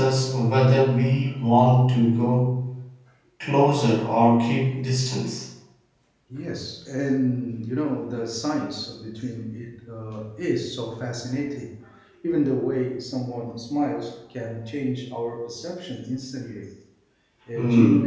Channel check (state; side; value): identical; both; correlation 1.00